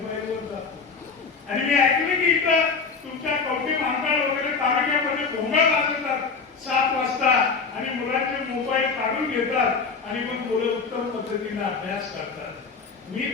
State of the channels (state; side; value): quieter; right; 5.0 dB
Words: जातो. आणि मी ऐकलं की इथं तुमच्या कवठी महाकाळ वगैरे तालुक्यामध्ये भोंगा वाजवतात 7 वाजता आणि मुलांचे मोबाईल काढून घेतात आणि मग मुलं उत्तम पद्धतीने अभ्यास करतात. मी